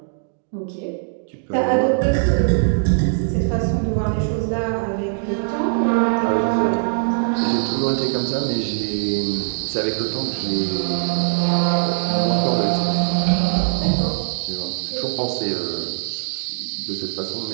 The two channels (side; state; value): left; silent; digital silence